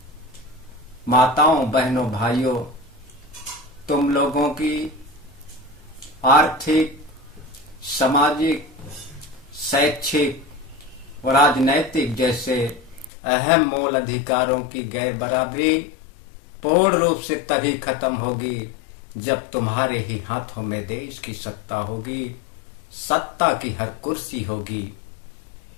माताओं, बहनों, भाइयों, तुम लोगों की आर्थिक, सामाजिक, शैक्षिक और राजनैतिक जैसे अहम मूल अधिकारों की गैर बराबरी पूर्ण रूप से तभी खत्म होगी जब तुम्हारे ही हाथों में देश की सत्ता होगी, सत्ता की हर कुर्सी होगी।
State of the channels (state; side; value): drops out; right; at 13.1 s